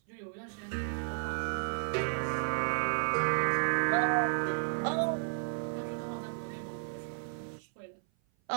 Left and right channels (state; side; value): silent; left; 56 dB below the other